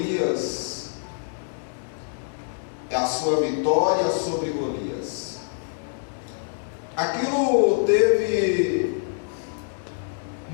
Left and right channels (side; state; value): right; silent; digital silence